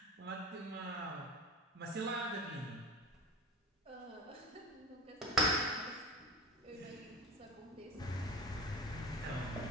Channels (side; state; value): both; normal; correlation 0.32